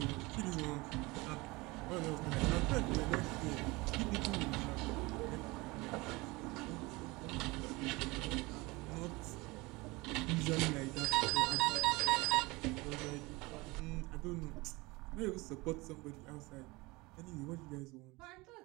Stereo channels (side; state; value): left; quieter; 23.4 dB